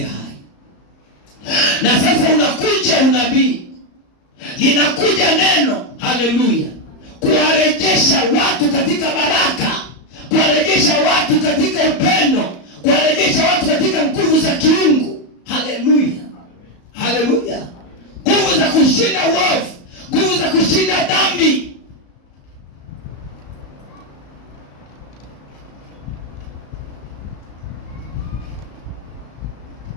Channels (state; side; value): late; right; 34 ms